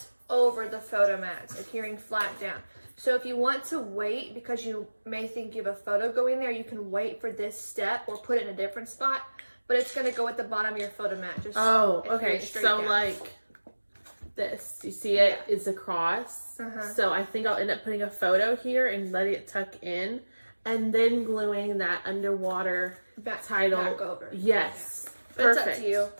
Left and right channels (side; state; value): both; inverted; correlation -1.00